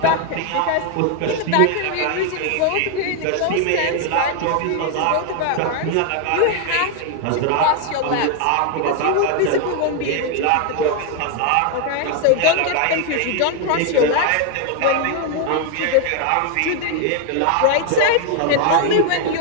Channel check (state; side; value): different; both; correlation 0.01